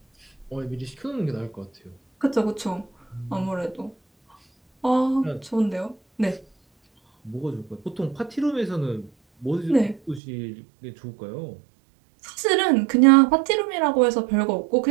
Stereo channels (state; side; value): drops out; left; at 10.2 s